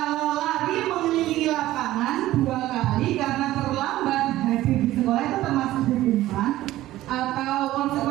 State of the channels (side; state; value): left; quieter; 15.3 dB